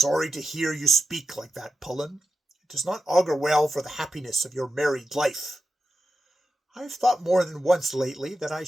to hear you speak like that, Pullen. It does not augur well for the happiness of your married life. I have thought more than once lately that I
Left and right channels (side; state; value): both; normal; correlation 0.90